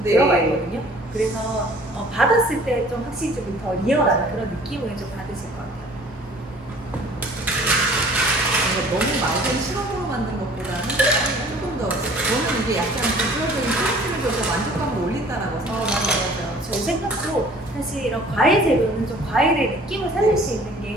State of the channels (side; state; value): both; normal; correlation 0.51